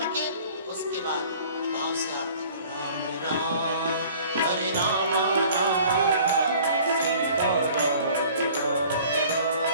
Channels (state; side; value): inverted; both; correlation -0.50